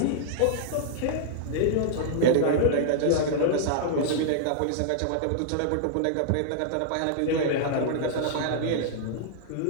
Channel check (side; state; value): both; different; correlation -0.01